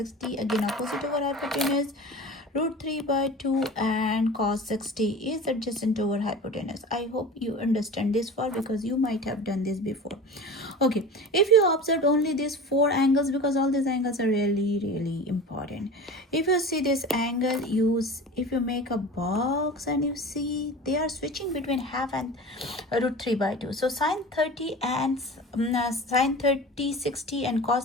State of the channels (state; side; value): normal; both; correlation 0.34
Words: again opposite over hypotenuse, root 3 by 2, and cos 60 is adjacent over hypotenuse. I hope you understand this far because you might have done this before. Okay, if you observe only these 4 angles, because all these angles are really important. If you see this angle, if you make a box and you see they are switching between half and root 3 by 2. So sine 30 and sine 30 60 and cos